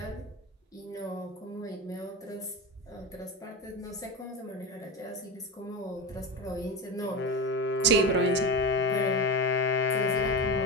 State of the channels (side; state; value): both; normal; correlation 0.22